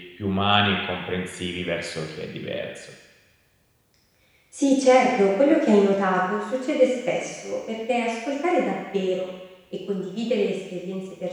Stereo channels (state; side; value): identical; both; correlation 1.00